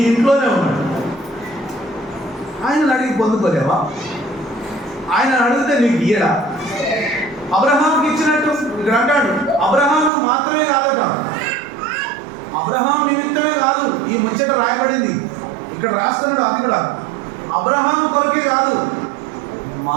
ఇంట్లోనే ఉన్నాడు. ఆయన అడిగి పొందుకోలేవా? ఆయన అడిగితే నీకు ఇయ్యడా? అబ్రహాంకి ఇచ్చినట్టు ఇక్కడ అంటాడు. అబ్రహాంకు మాత్రమే కాదట, అబ్రహాం నిమిత్తమే కాదు ఈ ముచ్చట రాయబడింది. ఇక్కడ రాస్తున్నాడు. అది కూడా అబ్రహాం కొరకే కాదు,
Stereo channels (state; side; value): drops out; left; at 10.1 s